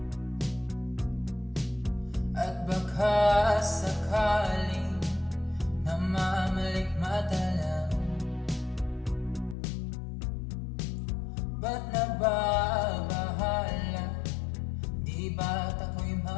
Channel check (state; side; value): drops out; right; at 9.6 s